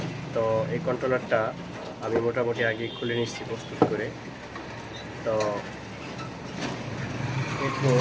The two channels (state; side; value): identical; both; correlation 1.00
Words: তো এই কন্ট্রোলারটা আমি মোটামুটি আগে খুলে নিচ্ছি প্রস্তুত করে। তো দেখবো